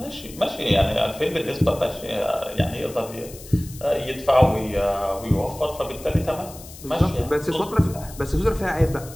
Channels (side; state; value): left; noise; hiss, 17 dB below the sound